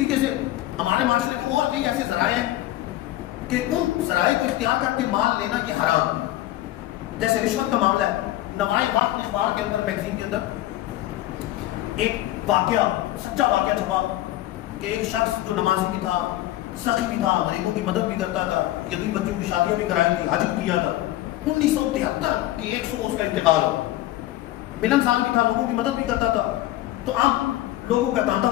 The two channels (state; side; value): quieter; right; 15.3 dB